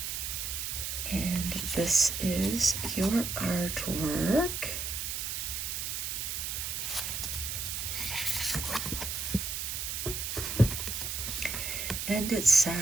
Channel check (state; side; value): noise; right; hiss, 3 dB below the sound